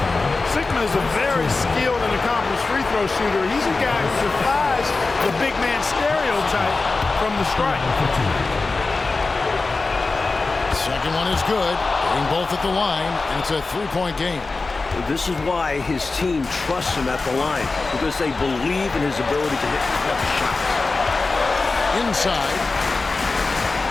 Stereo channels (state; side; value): quieter; right; 3.8 dB